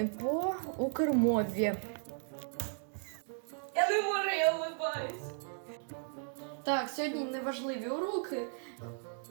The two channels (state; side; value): silent; left; 54 dB below the other